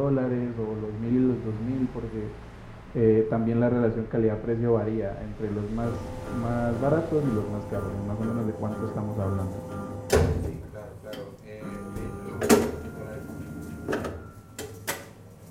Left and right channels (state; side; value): identical; both; correlation 1.00